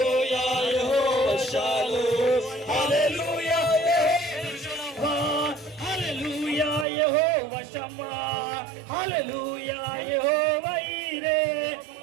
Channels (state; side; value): drops out; left; at 6.9 s